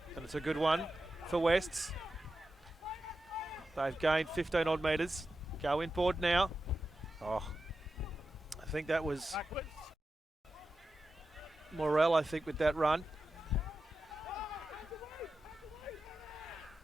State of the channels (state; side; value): normal; both; correlation 0.91